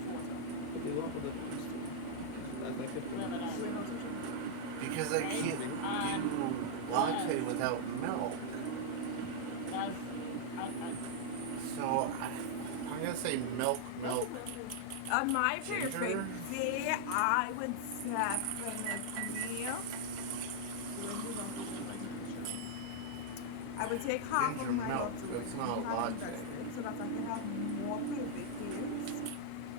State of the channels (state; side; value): different; both; correlation -0.01